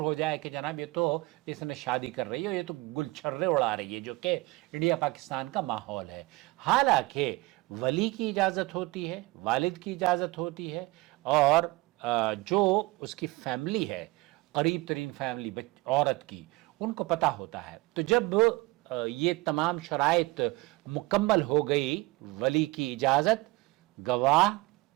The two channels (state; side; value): quieter; left; 21.9 dB